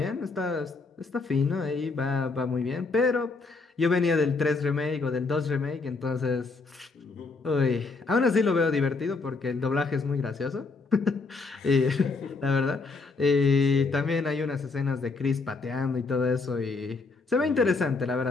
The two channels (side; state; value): right; quieter; 4.0 dB